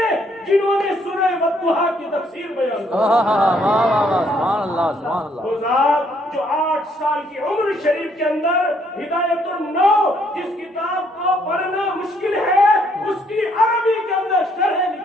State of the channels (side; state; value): both; normal; correlation 0.68